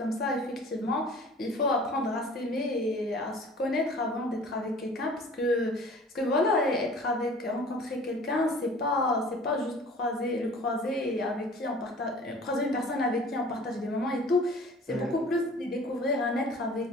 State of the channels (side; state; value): both; normal; correlation 0.46